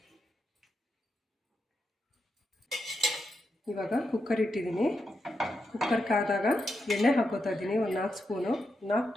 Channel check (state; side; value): normal; both; correlation 0.86